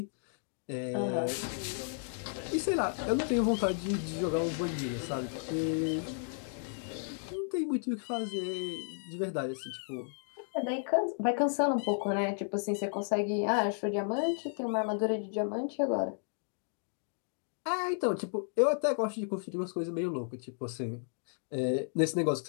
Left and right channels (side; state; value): right; silent; 56 dB below the other